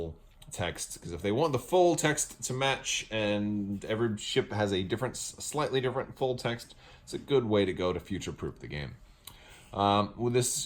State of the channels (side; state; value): both; identical; correlation 1.00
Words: text, because if they want the full text to match, and every ship has a slightly different full text, it's a good way to go to future-proof the game. Well,